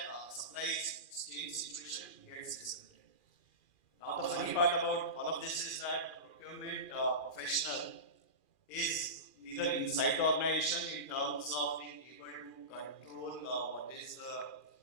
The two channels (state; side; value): late; right; 2.4 ms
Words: supply chain situation gets disrupted. Now, the funny part about all of this is that the procurement professional is neither inside the organization in terms of being able to control what is the